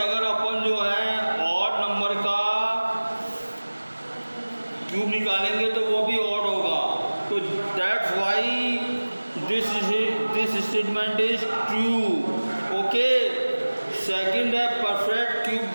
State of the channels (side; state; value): both; inverted; correlation -1.00